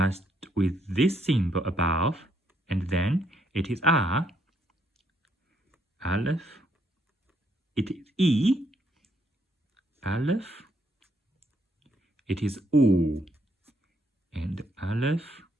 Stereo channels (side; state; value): both; normal; correlation 0.73